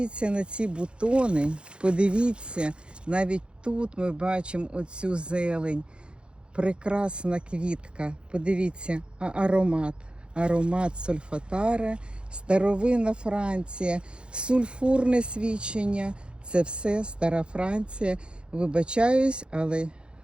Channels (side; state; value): left; late; 0.055 ms